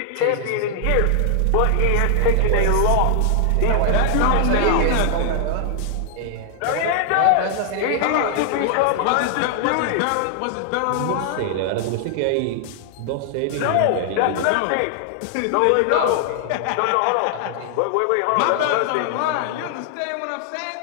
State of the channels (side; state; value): both; different; correlation 0.00